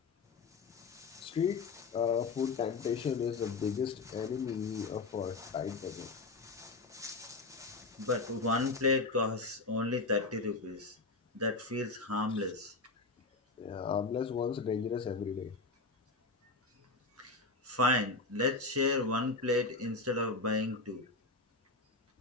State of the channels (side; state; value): right; quieter; 3.7 dB